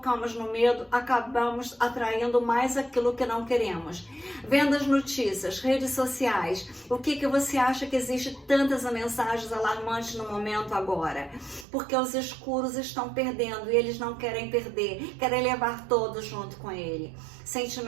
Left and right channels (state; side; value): drops out; left; at 11.7 s